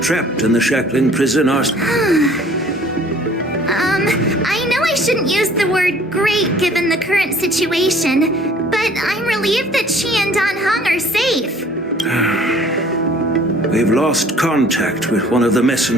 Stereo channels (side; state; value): both; normal; correlation 0.54